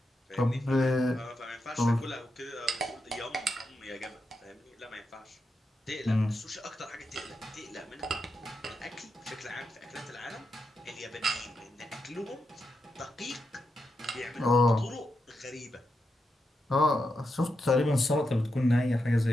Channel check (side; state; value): both; normal; correlation 0.86